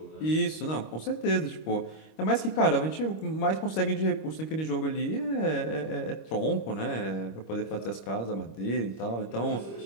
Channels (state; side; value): late; right; 25 ms